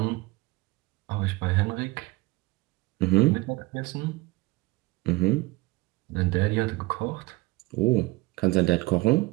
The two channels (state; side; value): quieter; left; 22.0 dB